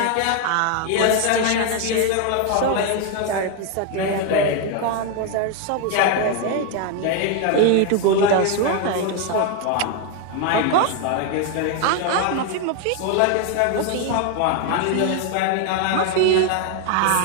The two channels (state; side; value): different; both; correlation 0.01